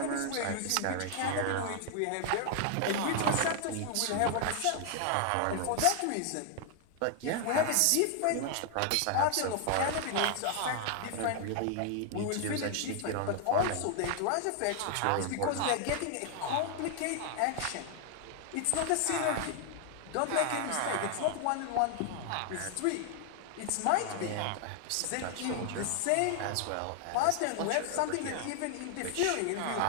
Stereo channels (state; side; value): different; both; correlation 0.00